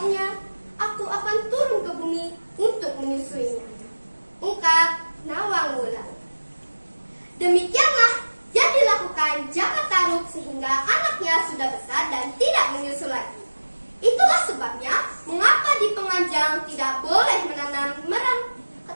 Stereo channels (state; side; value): inverted; both; correlation -1.00